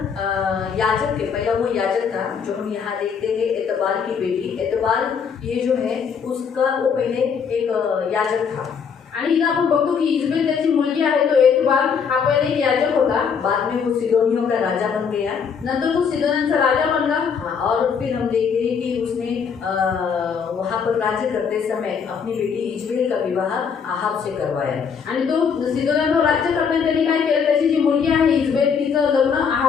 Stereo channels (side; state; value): right; quieter; 6.5 dB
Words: याजक है, पहला वो याजक था जो हम यहाँ देखते हैं, एतबाल की बेटी। एतबाल ये जो है उसका वो पहले एक याजक था। आणि इथं आपण बघतो की इजबेल त्याची मुलगी आहे, तो एतबाल हा पहिले एक याजक होता, बाद में वो सिदोनियों का राजा बन गया। नंतर तो सिदोन्यांचा राजा बनला। हाँ, और फिर हम देखते हैं कि उसने वहाँ पर राज्य करते समय अपनी बेटी इजबेल का विवाह अहाब से करवाया। आणि तो सिदोन्यांवर राज्य करताना त्यांनी काय केलं, त्याची जी मुलगी आहे इजबेल तिचं लग्न